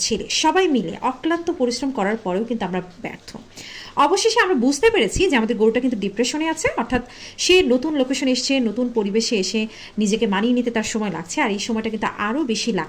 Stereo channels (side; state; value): both; identical; correlation 1.00